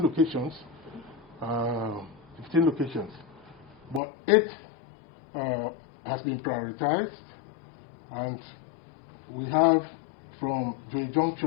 locations. 15 locations, but 8 has been prioritized, and we have from Joy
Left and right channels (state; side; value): drops out; right; at 4.0 s